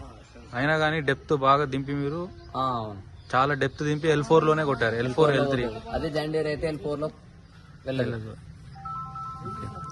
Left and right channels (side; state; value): both; identical; correlation 1.00